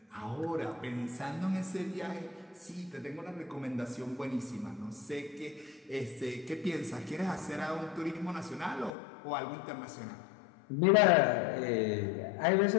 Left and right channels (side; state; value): right; drops out; at 8.9 s